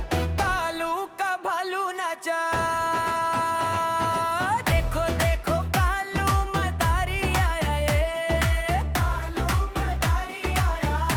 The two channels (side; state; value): both; identical; correlation 1.00